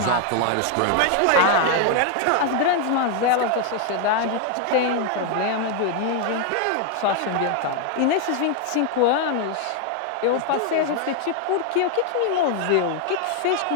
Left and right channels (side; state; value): both; different; correlation 0.00